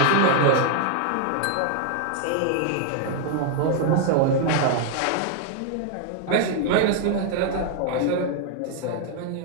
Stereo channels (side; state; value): both; different; correlation 0.00